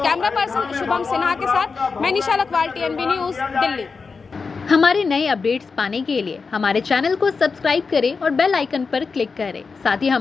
पर्सन शुभम सिन्हा के साथ मैं निशा लखवाल, TNB न्यूज़, दिल्ली। हमारे नए अपडेट्स पाने के लिए हमारे चैनल को सब्सक्राइब करें और बेल आइकन पर क्लिक करें। साथ ही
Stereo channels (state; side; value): quieter; right; 4.8 dB